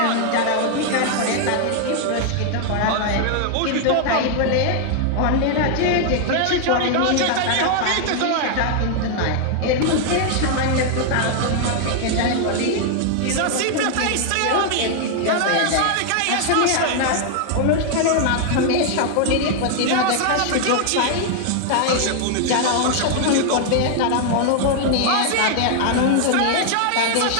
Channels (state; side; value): different; both; correlation 0.00